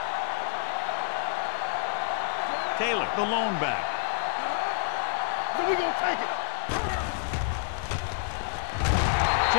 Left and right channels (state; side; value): silent; right; 59 dB below the other